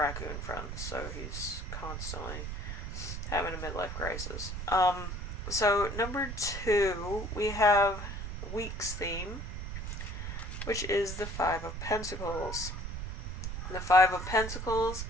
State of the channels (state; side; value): noise; right; rumble, 5 dB below the sound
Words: friends, so he's constantly having a midlife crisis. So number 2, we have week's theme, which is the Five of Pentacles. The Five of Pentacles,